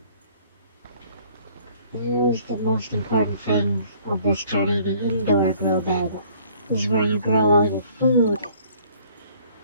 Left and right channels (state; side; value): inverted; both; correlation -0.57